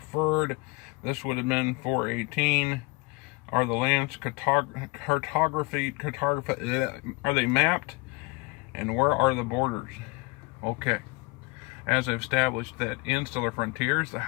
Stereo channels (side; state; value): right; quieter; 25.6 dB